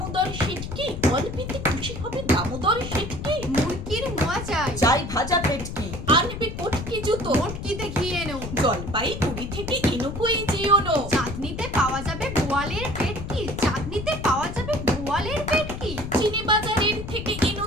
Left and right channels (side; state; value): left; noise; rumble, 8 dB below the sound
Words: শেঠকি, অল্পেতে খুশি হবে দামোদর শেঠকি। মুরগির মোয়া চাই, চাই ভাজা পেটকি, আনবে কটকি জুতো, মোটকিতে ঘি এনো, জলপাইগুড়ি থেকে এনুকোই যেওনো। চাঁদনিতে পাওয়া যাবে বোয়ালের পেটকি, চাঁদনিতে পাওয়া যাবে বোয়ালের পেটকি। চিনি বাজারের থেকে এনো